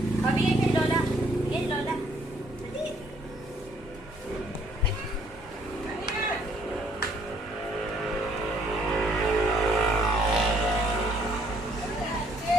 Pabigay kay Lola. Kay Lola. Dali.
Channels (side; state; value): both; normal; correlation 0.65